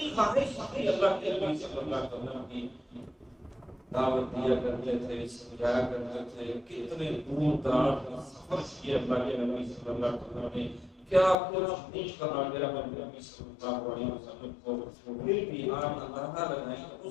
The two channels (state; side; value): drops out; right; at 11.4 s